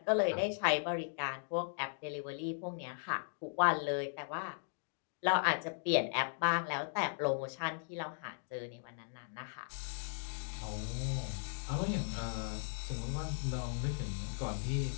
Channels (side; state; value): right; silent; digital silence